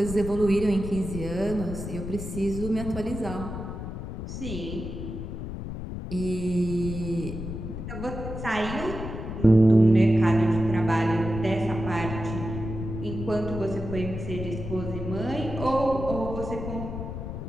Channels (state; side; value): noise; left; rumble, 7 dB below the sound